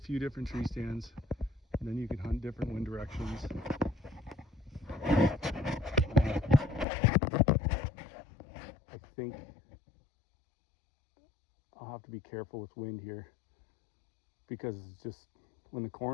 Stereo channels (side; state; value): right; drops out; at 6.9 s